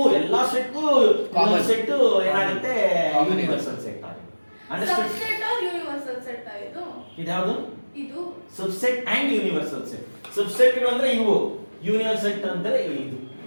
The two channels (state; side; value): inverted; both; correlation -1.00